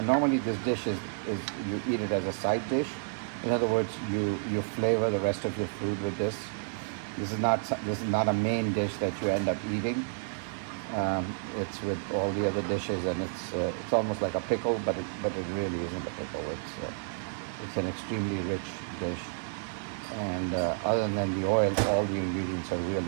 normally this dish is you eat it as a side dish. In other words, you flavor the rest of your food with this. This is not a main dish that you end up eating. It's with all the other dishes, and it's almost like a pickle, but it really isn't a pickle. It's an extremely rich dish, and other than the oil, all the ingredients are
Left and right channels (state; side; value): silent; left; digital silence